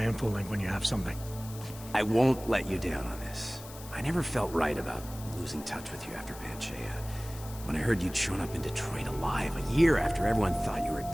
infolink when you have something. I won't let you down on this. I never felt right about losing touch with you after Panchaea. When I heard you'd shown up in Detroit alive a year after everyone thought you were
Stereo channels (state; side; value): noise; left; hiss, 16 dB below the sound